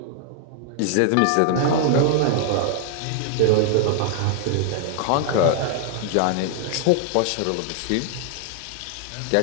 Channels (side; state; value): both; different; correlation 0.00